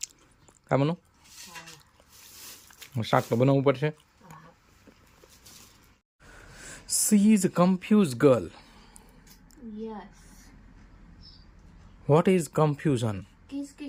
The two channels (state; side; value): identical; both; correlation 1.00